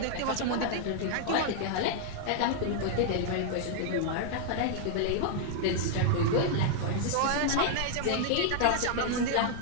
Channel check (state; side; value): different; both; correlation -0.01